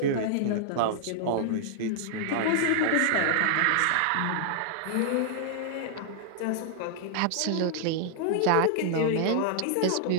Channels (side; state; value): both; different; correlation -0.01